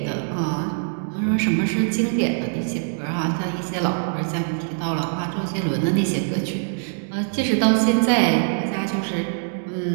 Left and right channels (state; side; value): silent; left; digital silence